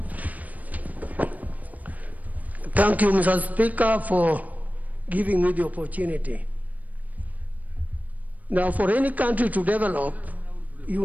Thank you, Mr. Speaker, for giving me the opportunity. Now, for any country to develop,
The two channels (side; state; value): left; late; 0.075 ms